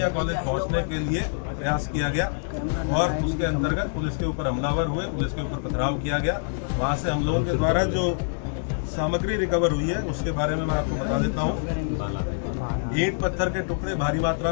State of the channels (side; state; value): right; silent; digital silence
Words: कॉलेज पहुंचने के लिए प्रयास किया गया और उसके अंतर्गत पुलिस के ऊपर हमलावर हुए, पुलिस के ऊपर पथराव किया गया। वहां से हम लोगों के द्वारा जो सामग्री रिकवर हुई है उसके बारे में मैं आपको बता देता हूँ। ईंट पत्थर के टुकड़े भारी मात्रा